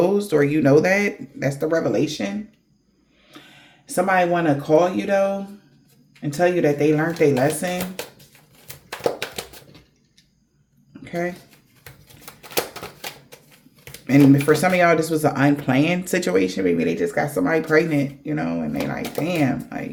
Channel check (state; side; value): identical; both; correlation 1.00